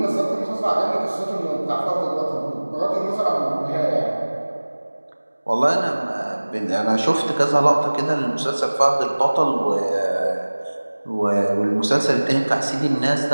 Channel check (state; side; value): inverted; both; correlation -1.00